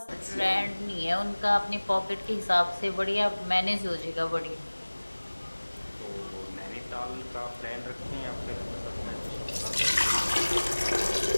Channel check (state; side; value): inverted; both; correlation -1.00